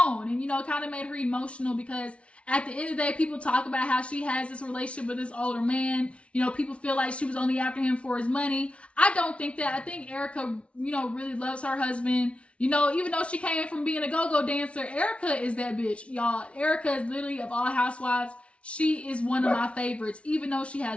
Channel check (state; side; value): late; right; 0.061 ms